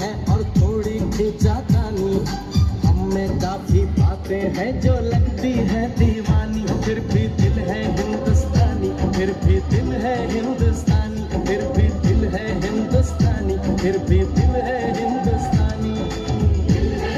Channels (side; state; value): both; identical; correlation 1.00